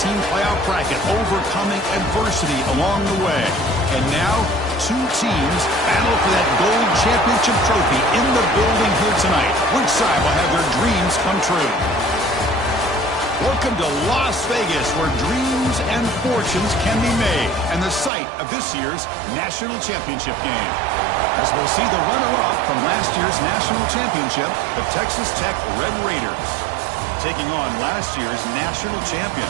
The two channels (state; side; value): drops out; left; at 18.1 s